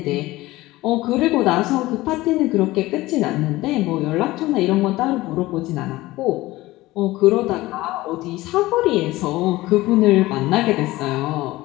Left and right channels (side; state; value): right; quieter; 18.4 dB